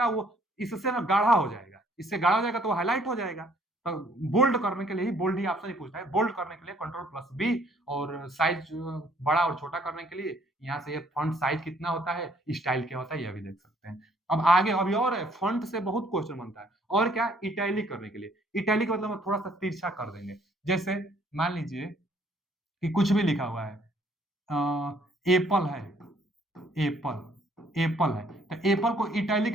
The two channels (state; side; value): normal; both; correlation 0.63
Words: वो इससे ना गाढ़ा हो जाएगा, इससे गाढ़ा हो जाएगा तो वो हाईलाइट हो जाएगा। तो बोल्ड करने के लिए ही बोल्ड ही ऑप्शन ही पूछता है। बोल्ड करने के लिए कंट्रोल प्लस बी, और साइज बड़ा और छोटा करने के लिए यहाँ से ये फॉन्ट साइज कितना होता है, स्टाइल क्या होता है, यह भी देख सकते हैं। अब आगे अभी और है, फॉन्ट से बहुत क्वेश्चन बनता है। और क्या, इटैलिक करने के लिए। इटैलिक मतलब हम थोड़ा सा तिरछा कर देंगे। जैसे मान लीजिए कि कुछ भी लिखा हुआ है, एप्पल है, एप्पल एप्पल है, तो एप्पल को इटैलिक